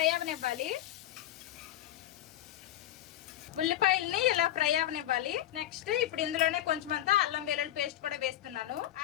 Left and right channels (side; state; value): right; quieter; 13.0 dB